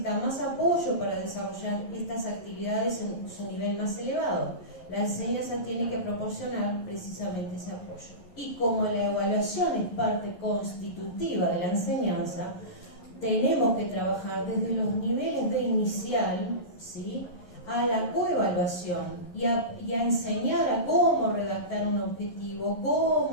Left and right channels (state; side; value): late; right; 11 ms